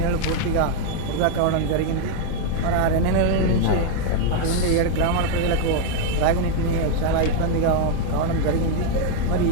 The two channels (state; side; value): different; both; correlation 0.00